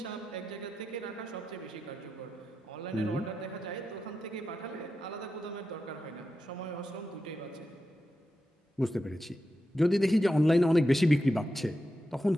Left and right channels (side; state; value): both; normal; correlation 0.89